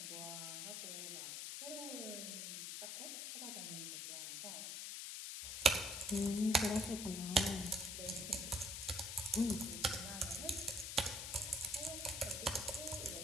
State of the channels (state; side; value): noise; left; hiss, 5 dB below the sound